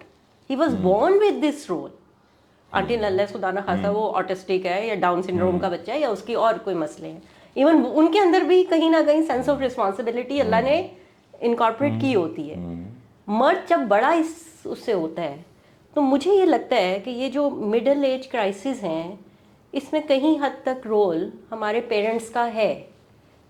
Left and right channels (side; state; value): both; identical; correlation 1.00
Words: He was born with this role until unless خدا نہ خاصا وہ آٹسٹک ہے یا ڈاؤن سنڈروم کا بچہ ہے یا اس کی اور کوئی مسئلے ہیں. ایون ان کے اندر بھی کہیں نہ کہیں سینس آف رسپانسبلٹی اللہ نے انکارپوریٹ کی ہوتی ہے. مرد جب بڑا اس سے ہوتا ہے تو مجھے یہ لگتا ہے کہ یہ جو مڈل ایج کرائسس ہیں, اس میں کہیں حد تک رول ہمارے پیرنٹس کا ہے.